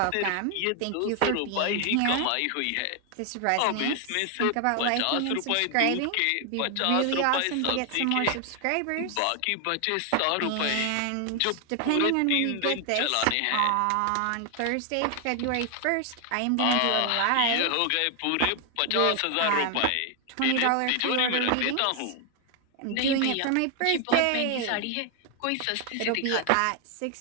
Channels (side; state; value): both; different; correlation 0.00